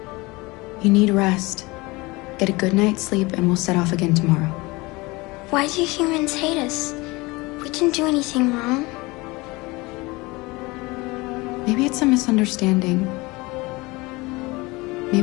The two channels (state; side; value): quieter; right; 23.5 dB